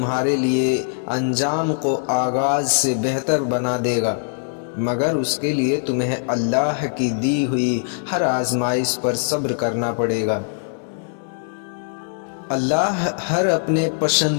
لیے انجام کو آغاز سے بہتر بنا دے گا، مگر اس کے لیے تمہیں اللہ کی دی ہوئی ہر آزمائش پر صبر کرنا پڑے گا۔ اللہ ہر اپنے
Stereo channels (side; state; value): right; silent; digital silence